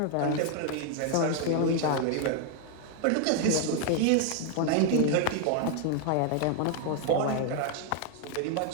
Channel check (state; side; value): different; both; correlation 0.00